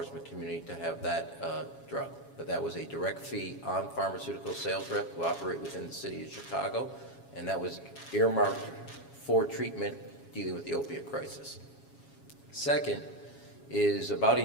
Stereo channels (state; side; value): late; right; 7.3 ms